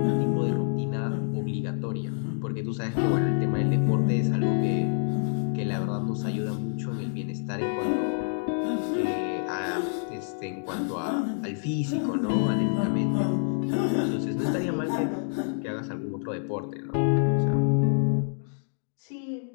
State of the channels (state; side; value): silent; right; digital silence